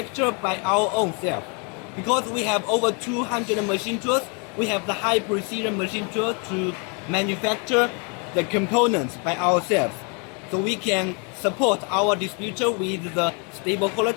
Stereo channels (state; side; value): quieter; right; 35.3 dB